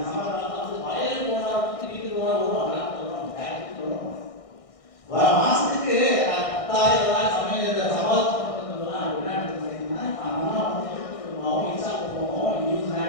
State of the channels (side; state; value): right; late; 1.6 ms